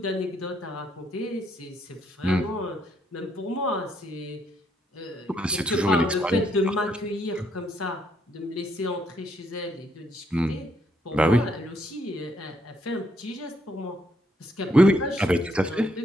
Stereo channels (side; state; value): both; normal; correlation 0.73